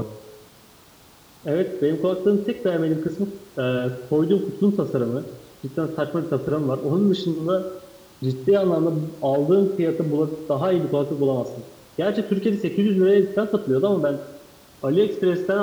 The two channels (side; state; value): both; identical; correlation 1.00